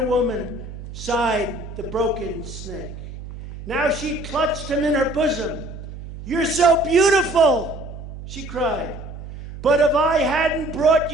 woman, sighed the broken snake. Now she clutched him in her bosom. You're so beautiful, she cried. But if I hadn't brought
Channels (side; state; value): right; noise; hum, 12 dB below the sound